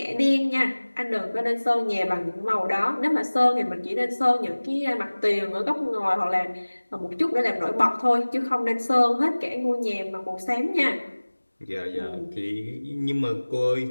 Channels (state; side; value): inverted; both; correlation -1.00